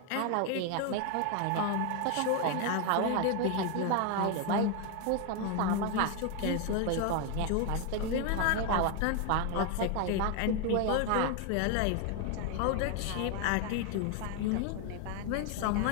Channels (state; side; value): different; both; correlation 0.01